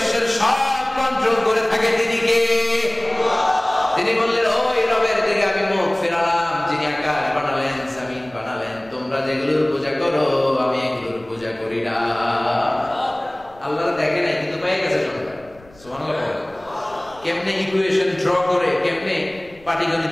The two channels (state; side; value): noise; left; rumble, 26 dB below the sound